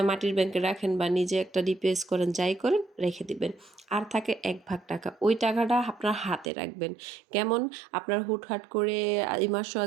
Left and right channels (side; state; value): left; drops out; at 6.5 s